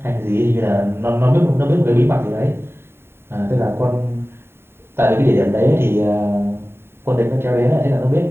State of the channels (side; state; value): left; late; 0.11 ms